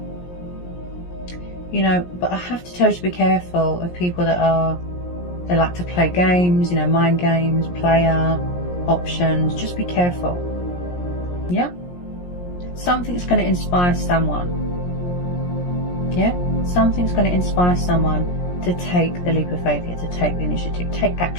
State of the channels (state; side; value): late; right; 17 ms